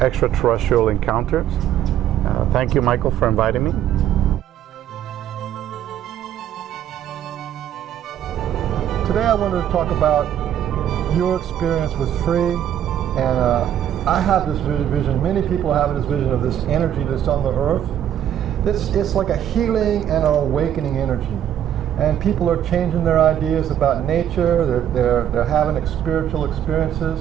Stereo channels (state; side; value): quieter; left; 10.5 dB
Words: Encounters. Thank you, Michael, for inviting me. Today I wanted to talk about your experience with Free, and I have this vision, many people have this vision of this energy that's on the earth. It's like a healing and an awakening energy. And people are changing their ideas about nature, they're having spiritual experiences.